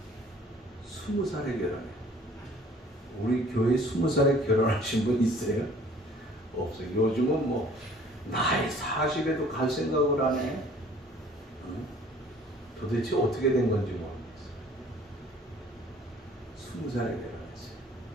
20살에 결혼해요. 우리 교회 20살에 결혼하신 분 있어요? 없어요. 요즘은 뭐 나이 40에도 갈 생각을 안 해. 응? 도대체 어떻게 된 건지 모르겠어요. 20살에 결혼했어요.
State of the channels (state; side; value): normal; both; correlation 0.53